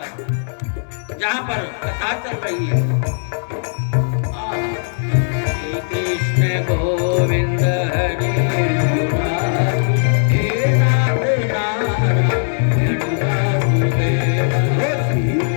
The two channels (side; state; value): right; silent; 67 dB below the other